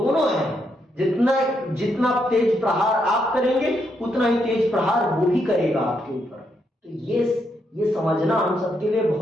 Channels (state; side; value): normal; both; correlation 0.79